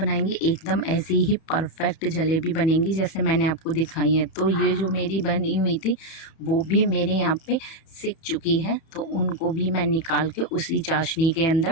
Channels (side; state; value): right; late; 30 ms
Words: एकदम ऐसी ही परफेक्ट जलेबी बनेंगी जैसे मैंने आपको दिखाई है। तो ये जो मेरी बनी हुई थी वो भी मेरे यहाँ पे सिक चुकी है, तो उनको भी मैं निकाल के उसी चाशनी के